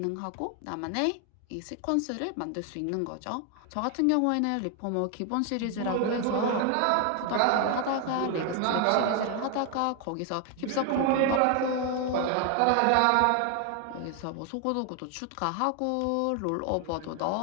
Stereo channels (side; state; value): both; different; correlation 0.00